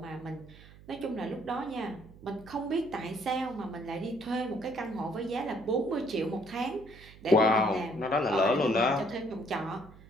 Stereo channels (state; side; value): noise; right; hum, 21 dB below the sound